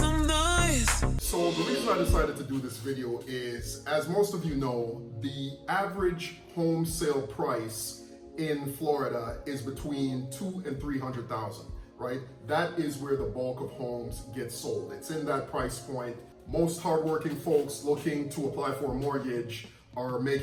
noise. So the reason I decided to do this video is, as most of you know, the average home sale price in Florida is between $200,000 and $300,000, right? That is where the bulk of homes get sold. It's in that price point. Most hardworking folks looking to apply for a mortgage are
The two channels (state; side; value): identical; both; correlation 1.00